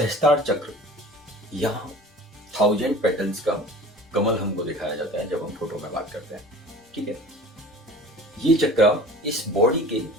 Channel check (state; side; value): normal; both; correlation 0.42